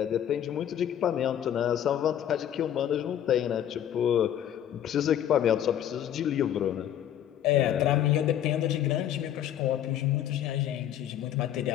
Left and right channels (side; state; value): right; quieter; 10.6 dB